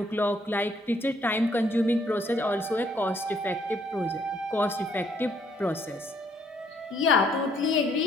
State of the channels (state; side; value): normal; both; correlation 0.67